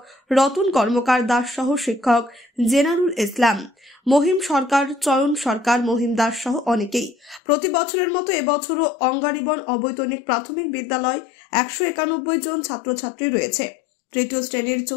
রতন কর্মকার দাস সহ শিক্ষক জেনারুল ইসলাম, মহিম সরকার, চয়ন সরকার, মহিম দাস সহ অনেকেই। প্রতি বছরের মতো এবছরও অঙ্গারিবন অবৈতনিক প্রাথমিক বিদ্যালয় 191 জন ছাত্রছাত্রী রয়েছে। তৃতীয় শ্রেণীর,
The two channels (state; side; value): drops out; right; at 7.4 s